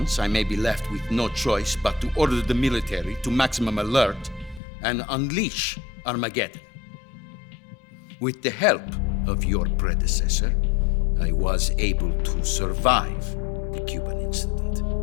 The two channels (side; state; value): right; drops out; at 4.6 s